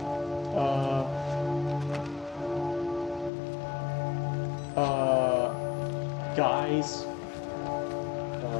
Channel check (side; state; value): right; drops out; at 3.3 s